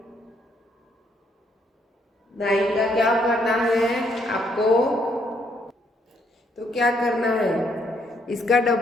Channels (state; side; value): normal; both; correlation 0.71